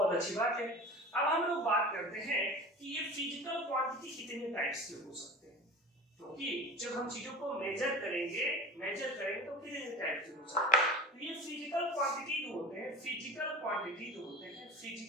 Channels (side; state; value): both; normal; correlation 0.36